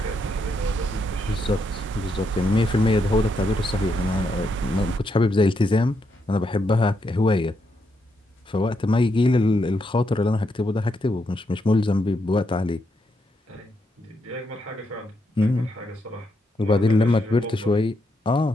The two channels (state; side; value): normal; both; correlation 0.80